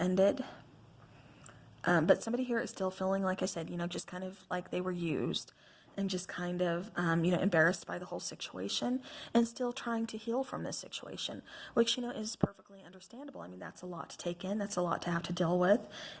But somebody here is still feeling, like I said, just kind of like they were used. and just kind of, embarrassed by the whole situation and still trying to heal from this situation, which, is perfectly understandable. I mean, that's a lot to take in. That's a lot to have to deal with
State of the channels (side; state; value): both; identical; correlation 1.00